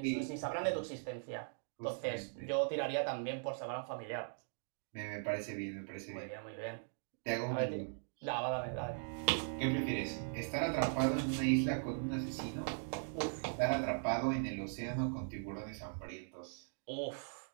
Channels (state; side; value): silent; left; digital silence